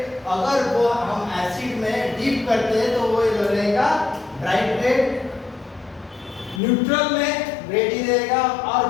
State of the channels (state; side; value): drops out; right; at 6.6 s